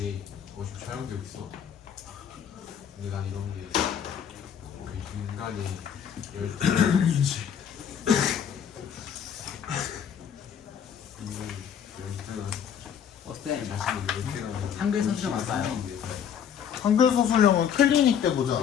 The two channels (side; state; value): right; quieter; 8.3 dB